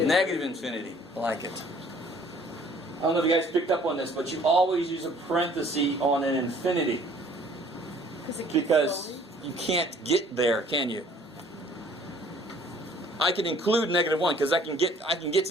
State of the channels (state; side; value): normal; both; correlation 0.56